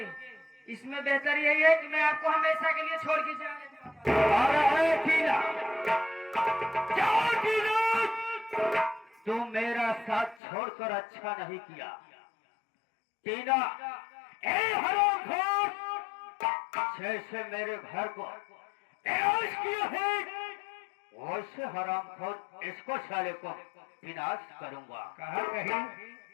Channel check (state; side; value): drops out; right; at 10.4 s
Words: इसमें बेहतर यही है कि मैं आपको हमेशा के लिए छोड़ के जाने। अरे टीना, जाओ टीना, तुम मेरा साथ छोड़कर अच्छा नहीं किया। टीना, ए हरामखोर, जैसे मेरे घर को ऐश किया है वैसे हरामखोर इसको साले को विनाश करूंगा। कहा कहीं